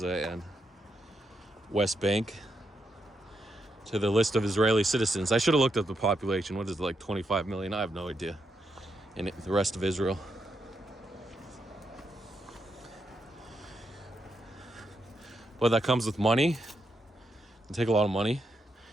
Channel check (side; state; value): both; normal; correlation 0.82